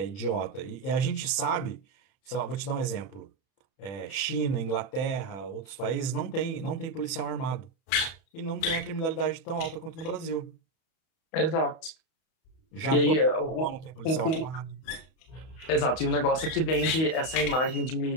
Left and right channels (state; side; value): late; right; 31 ms